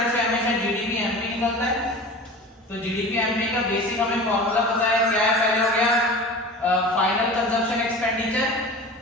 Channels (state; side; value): normal; both; correlation 0.35